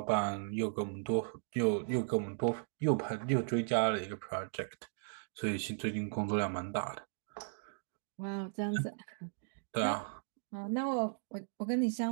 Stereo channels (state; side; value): silent; left; digital silence